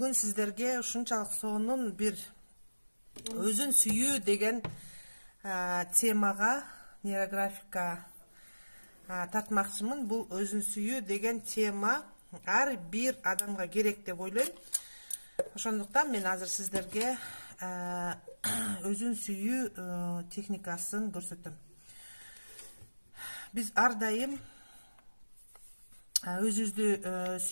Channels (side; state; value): both; inverted; correlation -1.00